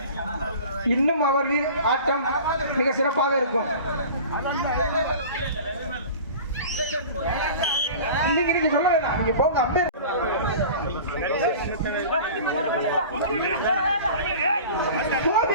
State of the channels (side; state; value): both; inverted; correlation -0.39